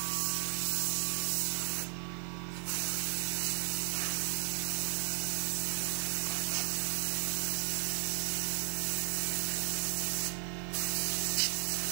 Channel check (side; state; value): left; silent; 55 dB below the other